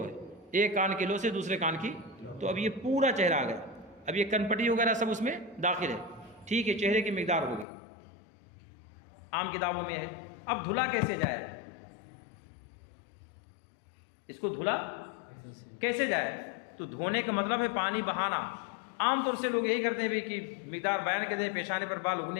है, एक कान की लो से दूसरे कान की। तो अब ये पूरा चेहरा आ गया। अब ये कनपट्टी वगैरह सब उसमें दाखिल है, ठीक है। चेहरे की मिक़दार हो गई, आम किताबों में है। अब धुला कैसे जाए? इसको धुला कैसे जाए? तो धोने का मतलब है पानी बहाना। आमतौर से लोग यही करते हैं भाई कि मिकदार बयान कर दे, पेशाने पर बाल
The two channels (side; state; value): right; drops out; at 7.7 s